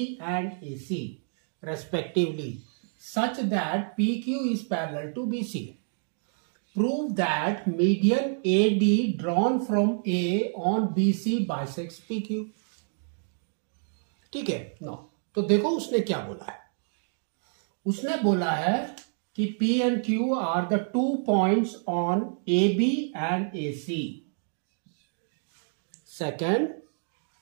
and A C respectively such that P Q is parallel to B C. Prove that median A D drawn from A on B C bisects P Q. ठीक है no, तो देखो उसने क्या बोला है। उसने बोला है कि P and Q are the 2 points on AB and AC. Second,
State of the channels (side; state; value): left; silent; 59 dB below the other